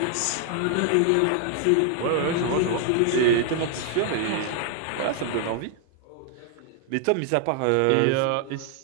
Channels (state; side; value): different; both; correlation 0.00